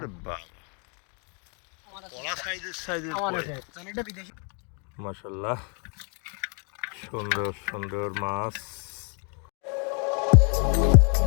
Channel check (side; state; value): right; quieter; 37.2 dB